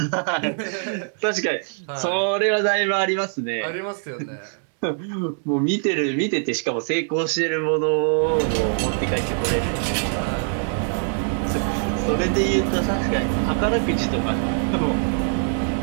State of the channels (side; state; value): left; silent; 56 dB below the other